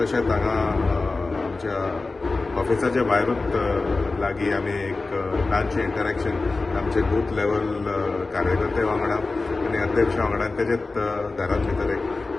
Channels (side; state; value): right; quieter; 3.6 dB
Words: हांगा आमच्या ऑफिसाच्या भायरूच लागीं आमी एक ल्हानशें इंटरॅक्शन आमचे बूथ लेवल कार्यकर्ते वांगडा आनी अध्यक्ष वांगडा तेजेच घरांत भितर एक